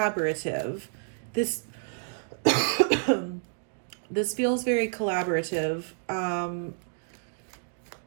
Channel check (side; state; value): left; silent; digital silence